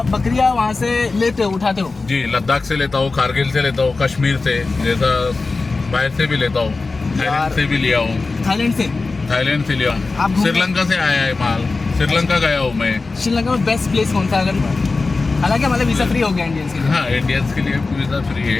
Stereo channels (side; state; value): right; quieter; 3.8 dB